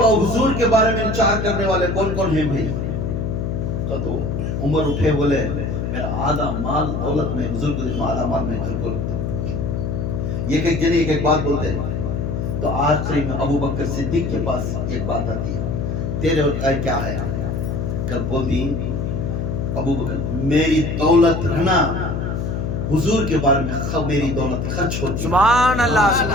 کے بارے میں انچار کرنے والے کون کون ہیں بھائی تو عمر اٹھے بولے میرا آدھا مال دولت میں حضور کو دیکھو آدھا مال میں گھر کو رکھتا ہوں یہ ایک جنے ایک بات بولتے ہیں تو آخری میں ابو بکر صدیق کے پاس ایک بات آتی ہے، تیرے اور کیا ہے؟ کل بولتی ابو بکر میری دولت رہنا حضور کے بارے میں میری دولت خرچ ہوتی ہے، سبحان اللہ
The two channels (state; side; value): noise; left; hum, 2 dB below the sound